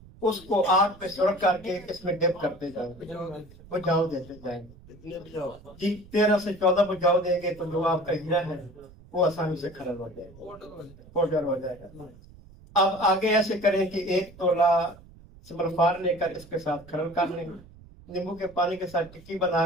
اس کو آگ پہ سرخ کر کے اس میں ڈپ کرتے جائیں گے، بجاؤ دیتے جائیں گے جی۔ 13 سے 14 بجاؤ دیں گے تو جو آپ کا ہیرا ہے وہ آسانی سے کھرل ہو جائے گا، پاؤڈر ہو جائے گا۔ اب آگے ایسے کریں کہ 1 تولہ سملفار لے کر اس کے ساتھ کھرل کر لیں، نیمبو کے پانی کے ساتھ ٹکی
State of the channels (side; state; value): right; noise; rumble, 22 dB below the sound